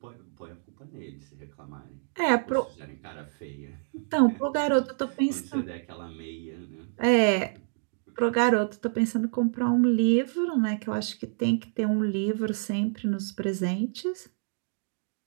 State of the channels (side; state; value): left; silent; digital silence